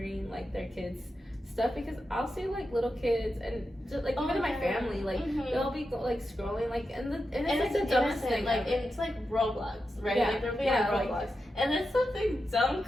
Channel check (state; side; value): normal; both; correlation 0.89